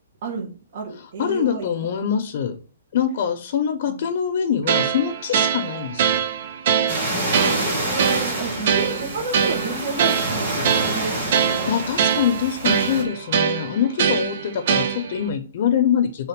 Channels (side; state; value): both; inverted; correlation -0.44